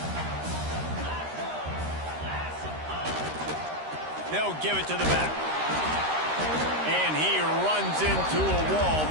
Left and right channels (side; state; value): left; late; 13 ms